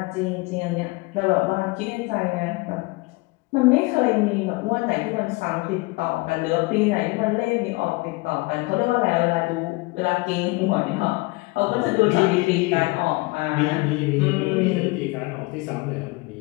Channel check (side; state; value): right; quieter; 24.6 dB